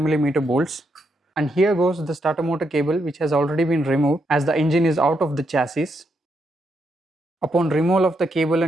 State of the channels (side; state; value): both; normal; correlation 0.79